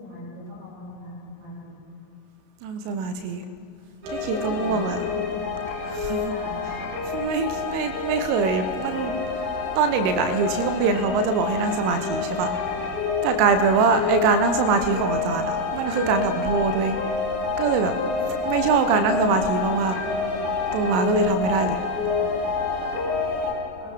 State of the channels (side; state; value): left; late; 32 ms